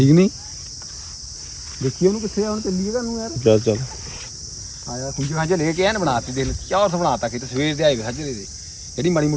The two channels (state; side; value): identical; both; correlation 1.00